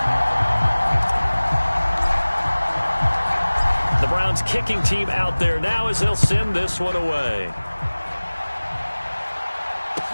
The Browns kicking team out there now as they'll send this one away.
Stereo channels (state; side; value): inverted; both; correlation -1.00